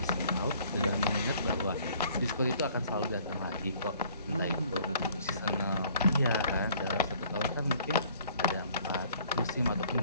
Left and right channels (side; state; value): both; inverted; correlation -0.57